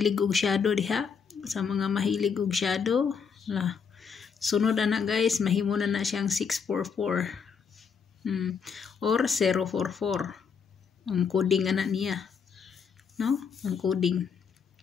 og shadow diha. Sa mga mahilig og shadow. Sunod na guys. Mahimo na siyang 644. Or 044. Ang coding anak niya. No? Ang coding.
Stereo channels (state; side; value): quieter; right; 6.2 dB